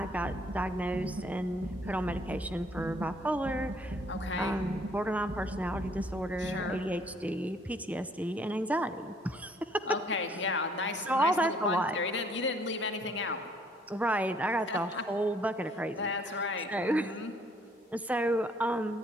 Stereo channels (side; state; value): both; normal; correlation 0.63